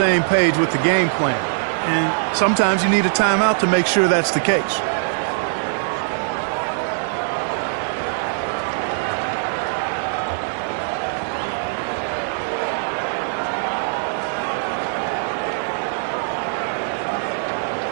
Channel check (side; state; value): left; silent; 65 dB below the other